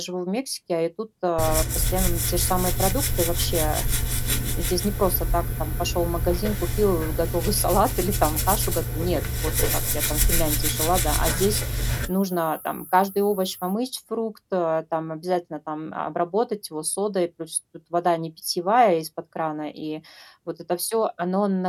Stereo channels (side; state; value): both; identical; correlation 1.00